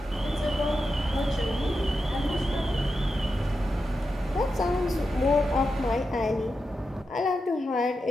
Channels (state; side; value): normal; both; correlation 0.89